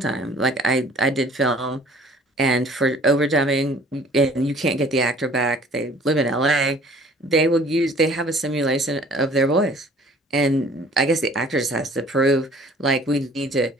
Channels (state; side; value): normal; both; correlation 0.52